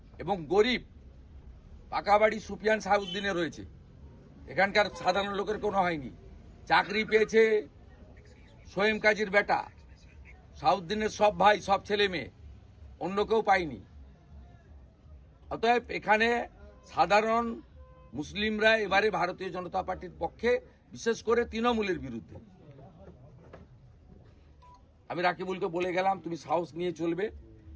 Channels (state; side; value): identical; both; correlation 1.00